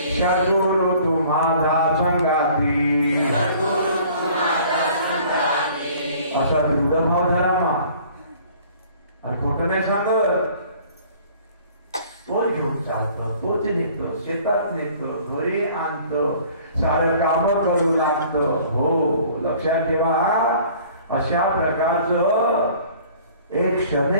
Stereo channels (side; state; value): both; inverted; correlation -0.52